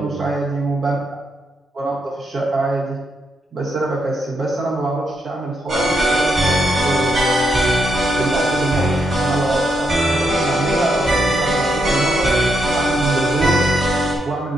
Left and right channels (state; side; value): normal; both; correlation 0.80